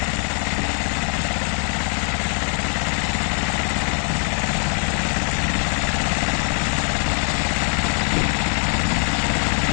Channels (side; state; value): right; quieter; 37.7 dB